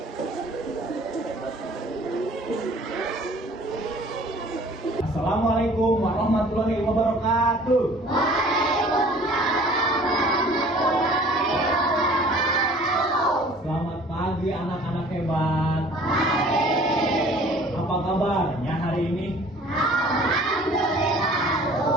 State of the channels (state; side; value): normal; both; correlation 0.50